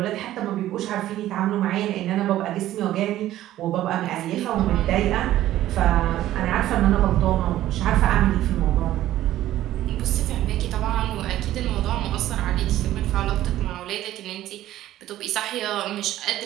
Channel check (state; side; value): quieter; left; 13.8 dB